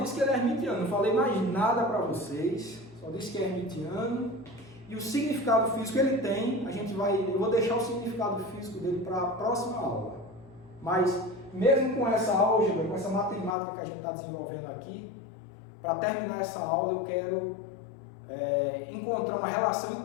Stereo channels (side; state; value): right; drops out; at 13.6 s